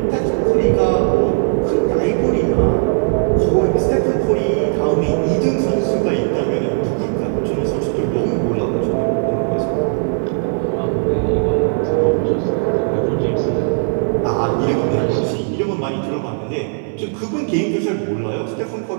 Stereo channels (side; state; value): left; silent; 59 dB below the other